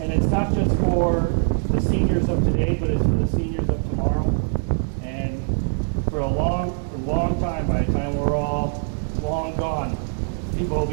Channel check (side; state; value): left; silent; 64 dB below the other